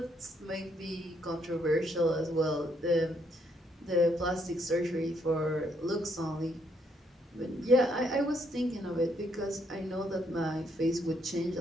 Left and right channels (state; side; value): normal; both; correlation 0.72